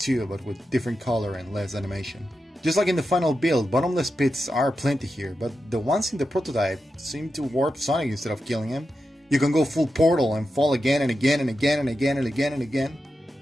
but with different color and less animation. Just like in the final build, bottomless pits are plenty here, but the ones in the prototype seem to warp Sonic instead of killing him. You can go full Portal and fall again and again and again and again and again and again.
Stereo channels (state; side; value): normal; both; correlation 0.89